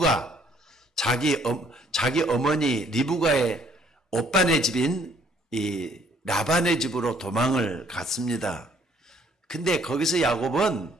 자기 어머니 리브가의 오빠네 집인 이 라반의 집으로 도망을 갔습니다. 근데 거기서 야곱은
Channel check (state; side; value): normal; both; correlation 0.62